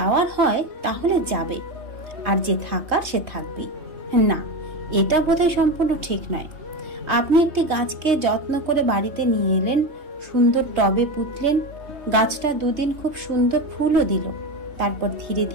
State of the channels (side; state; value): left; late; 3.2 ms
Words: হয় তাহলে যাবে, আর যে থাকার সে থাকবে না। এটা বোধহয় সম্পূর্ণ ঠিক নয়। আপনি একটি গাছকে যত্ন করে বাড়িতে নিয়ে এলেন, সুন্দর টবে পুঁতলেন, গাছটা দুদিন খুব সুন্দর ফুলও দিল, তারপর ধীরে